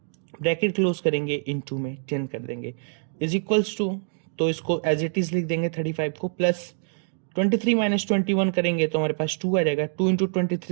ब्रैकेट क्लोज करेंगे, इनटू में 10 कर देंगे, इज इक्वल्स टू, तो इसको एज इट इज लिख देंगे 35 को, प्लस 23 माइनस 21 करेंगे तो हमारे पास 2 आ जाएगा, 2 इंटू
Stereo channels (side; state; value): left; silent; digital silence